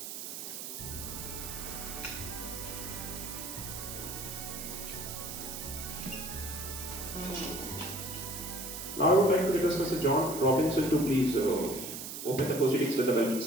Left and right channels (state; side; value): noise; right; hiss, 7 dB below the sound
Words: Now I would like to request Mr. John Robinson to please open the proceedings with the welcome